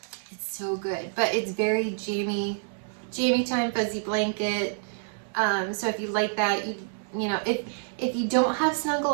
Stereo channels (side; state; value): left; silent; digital silence